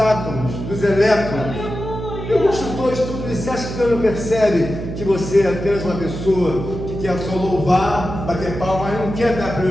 dos elétrons, tem um construtor de tudo isso. Você acha que Deus não percebe que você é apenas uma pessoa que quer só louvar, bater palma, mas não quer dar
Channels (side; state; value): right; noise; hum, 7 dB below the sound